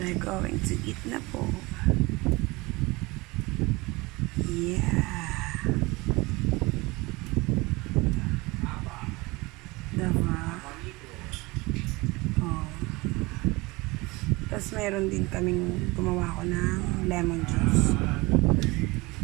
going to eat na po. Yeah. Diba? Oh. Tapos meron din kaming gumawa ko ng lemon juice.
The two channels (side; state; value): left; quieter; 23.6 dB